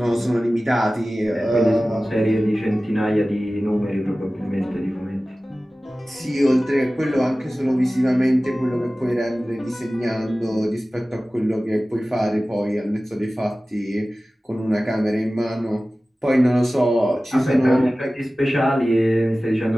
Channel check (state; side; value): normal; both; correlation 0.96